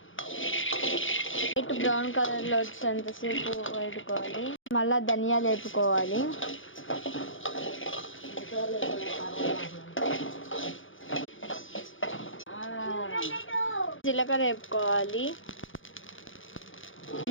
వైట్ బ్రౌన్ కలర్లో వచ్చేంతసేపు వేపుకోవాలి. మళ్ళా ధనియాలు వేపుకోవాలి. జీలకర్ర వేపుకోవాలి.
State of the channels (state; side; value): late; right; 0.57 ms